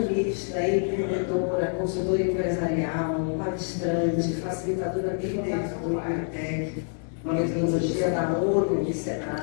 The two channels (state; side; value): silent; right; 60 dB below the other